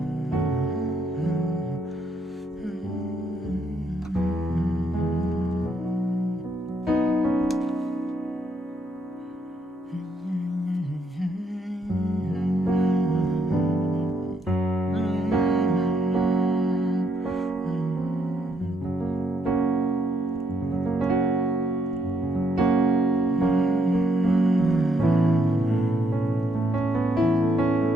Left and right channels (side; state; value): both; normal; correlation 0.75